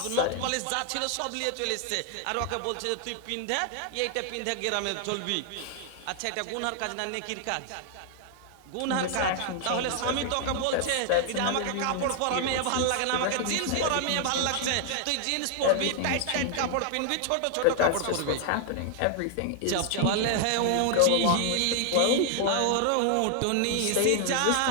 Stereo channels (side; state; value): both; different; correlation 0.00